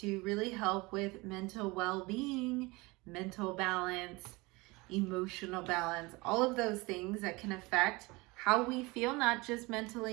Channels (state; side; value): quieter; left; 23.9 dB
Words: really help with mental well-being, mental balance, emotional balance, all of those things that can affect how we feel, not just